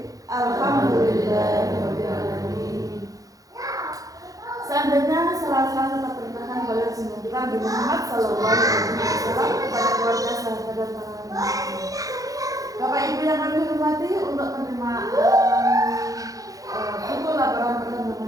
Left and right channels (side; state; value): left; late; 0.17 ms